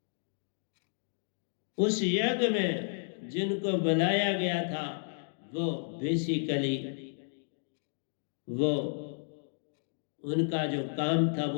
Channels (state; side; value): silent; right; digital silence